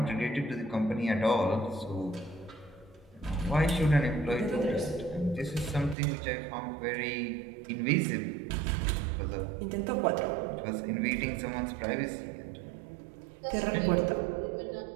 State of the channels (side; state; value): left; drops out; at 6.0 s